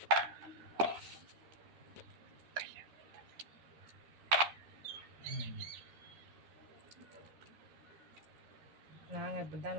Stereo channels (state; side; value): late; left; 13 ms